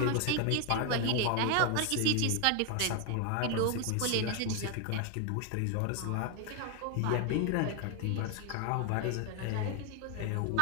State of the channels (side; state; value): both; different; correlation 0.01